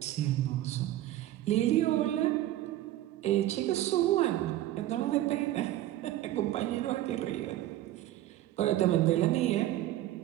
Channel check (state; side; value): quieter; left; 14.2 dB